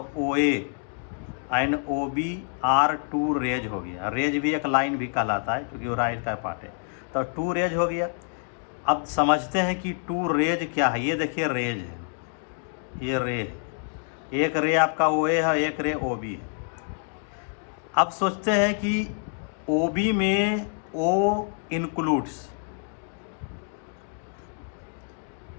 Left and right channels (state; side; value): silent; right; 58 dB below the other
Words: O A and O B are 2 rays हो गया। रेज भी एक लाइन भी कहलाता है क्योंकि वो राइट का पार्ट है, तो 2 रेज हो गया। अब समझते हैं कि 2 रेज क्या है। ये देखिए रेज है, ये रेज, एक रे आपका ओ ए है, एक रे ओ बी है। अब सोचते हैं कि ओ बी में ओ इंक्लूड्स